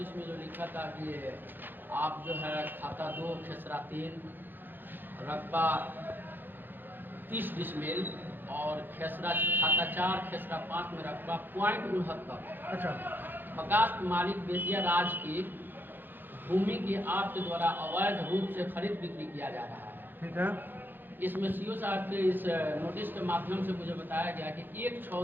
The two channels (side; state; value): left; late; 0.093 ms